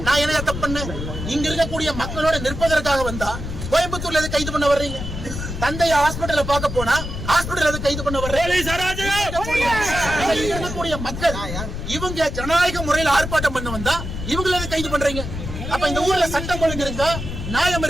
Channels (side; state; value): left; noise; rumble, 6 dB below the sound